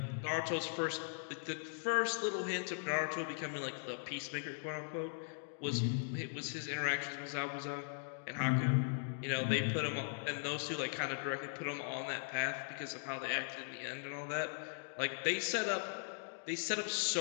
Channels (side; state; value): right; silent; digital silence